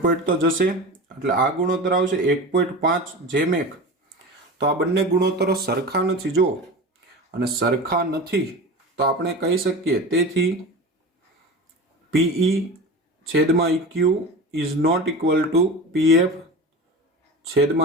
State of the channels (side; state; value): both; normal; correlation 0.31